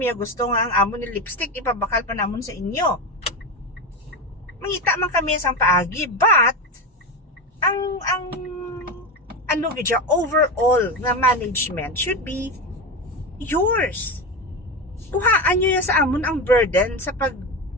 gusto nga ang amo ni lipstick, ipabakal pa namon sa inyo. Mangita man kami sang paagi, but ang ano gidya, overall nga management should be yours. Kuhaan nyo ya sa amon ang burden sa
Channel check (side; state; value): both; normal; correlation 0.19